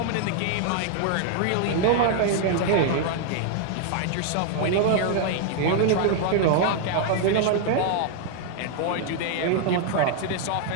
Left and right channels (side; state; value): both; different; correlation 0.00